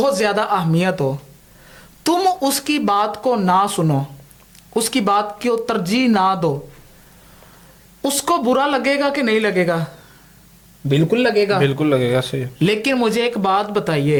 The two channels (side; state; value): both; identical; correlation 1.00